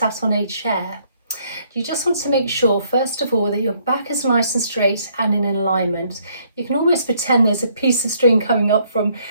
on a chair. You just want to make sure first of all that your back is nice and straight and in alignment. You can almost pretend there's a piece of string coming up from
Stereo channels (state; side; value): inverted; both; correlation -0.67